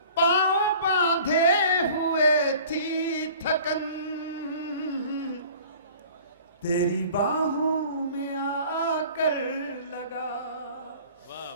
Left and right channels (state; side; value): inverted; both; correlation -0.47